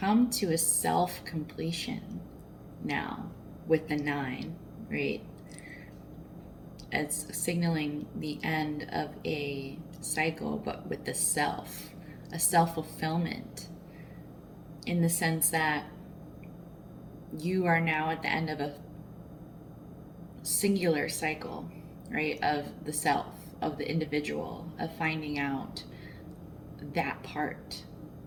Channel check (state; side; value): identical; both; correlation 1.00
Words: to a self completion now with the 9, right? It's signaling the end of a cycle, but with the self, a self fulfillment, in the sense that you are now at the end of a singular cycle, right? Of the self, of the individual, of finding out that part